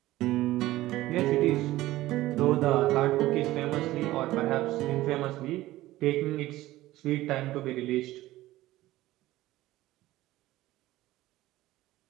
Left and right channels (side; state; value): left; quieter; 16.5 dB